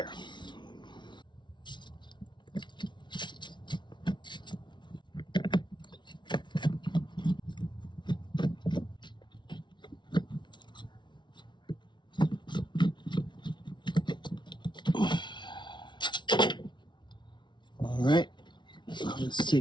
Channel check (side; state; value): right; late; 0.23 ms